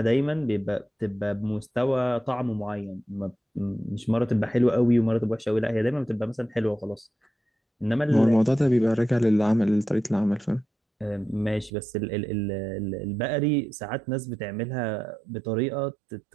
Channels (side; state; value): left; drops out; at 11.7 s